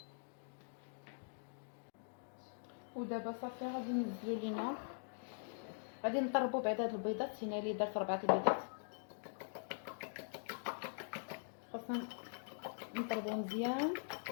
ودابا صافي غادي ننزلو لينا، غادي نضربو بعد هاد البيضات. هنا اللي درت 4 البيضات، خاصنا نضربو مزيان.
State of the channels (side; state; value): right; silent; digital silence